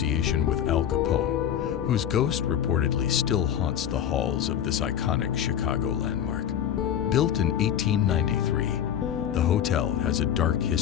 with Al Capone, whose ghost reportedly still haunts the halls of this iconic Chicago landmark. Built in 1893, the hotel has a dark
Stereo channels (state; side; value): quieter; right; 9.6 dB